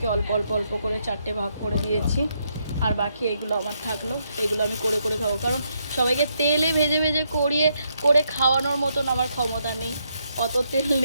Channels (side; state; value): both; inverted; correlation -0.77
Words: অল্প অল্প অল্প করে 4টে ভাগ করে দিয়েছি। আর বাকি এগুলো আমার থাকলো, এগুলো আমি করে করে খাবো, কারণ সবাইকে তেলে ভেজে ভেজে করে খাওয়ানোর মতন আমার ক্ষমতা নেই, অত তেল